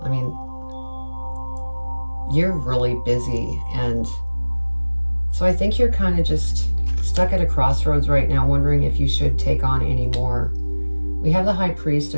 I mean, you're really busy. And so I think you're kind of just stuck at a crossroads right now, wondering if you should take on any more. We have the High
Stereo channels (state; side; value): inverted; both; correlation -1.00